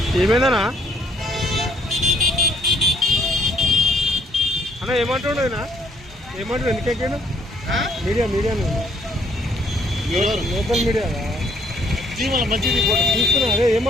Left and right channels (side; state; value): both; normal; correlation 0.65